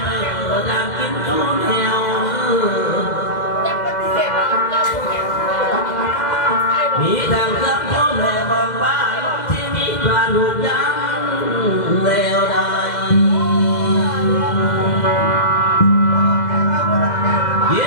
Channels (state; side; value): late; right; 2.0 ms